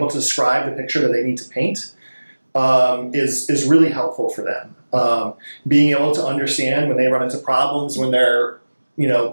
to describe the picture that they need to paint is really helpful for them. Being able to understand when they run into problems, when they're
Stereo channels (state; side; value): inverted; both; correlation -1.00